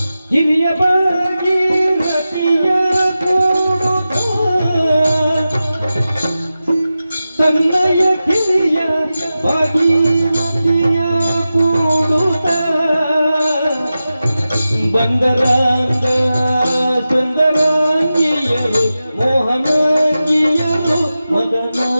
ಹಿರಿಯ ಭಾಗೀರಥಿಯ ಕೂಡುತ್ತ ತನ್ನಯ ಕಿರಿಯ ಭಾಗೀರಥಿಯ ಕೂಡುತ್ತ ಬಂದರಾಂಗ ಸುಂದರಾಂಗಿಯರು ಮೋಹನಾಂಗಿಯರು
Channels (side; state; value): both; inverted; correlation -0.93